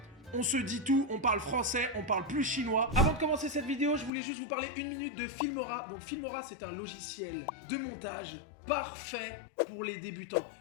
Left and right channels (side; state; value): right; drops out; at 4.1 s